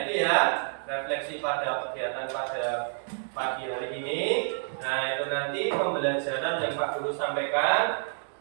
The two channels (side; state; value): left; silent; digital silence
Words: ini ya refleksi pada kegiatan pada pagi hari ini. Nah itu nanti pembelajaran yang Pak Guru sampaikan.